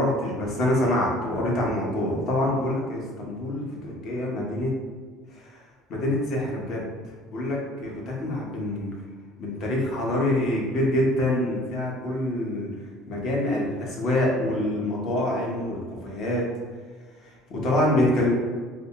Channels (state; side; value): normal; both; correlation 0.51